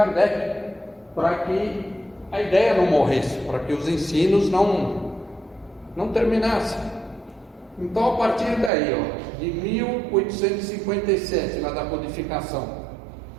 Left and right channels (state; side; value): drops out; left; at 8.7 s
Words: para que a ideia não morresse, para que os ensinos não terminassem. Então, a partir daí, ó, de 1857, lá da codificação,